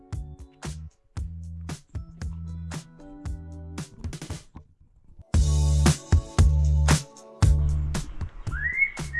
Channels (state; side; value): identical; both; correlation 1.00